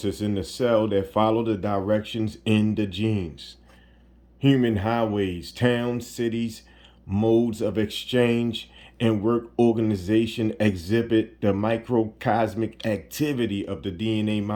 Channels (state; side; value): identical; both; correlation 1.00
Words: in the cell that follow the directions in the genes. Human highways, towns, cities, modes of exchange, and work organization exhibit the microcosmic activity of the DNA